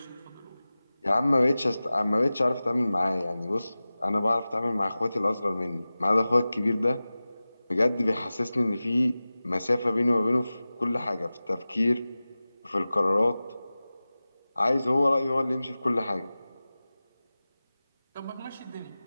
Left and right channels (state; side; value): inverted; both; correlation -0.97